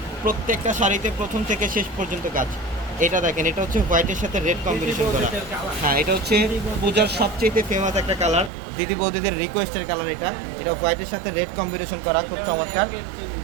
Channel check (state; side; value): drops out; left; at 8.5 s